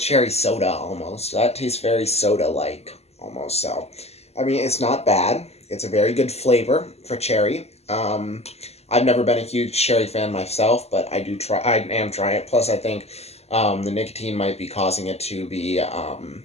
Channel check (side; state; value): right; late; 0.30 ms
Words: soda almost. That tastes very soda-like almost. So, I mean, it's not bad. It's a very good flavor for cherry. I've never been a huge cherry fan myself, but I am trying it. Plus, I think the nicotine might be causing it to be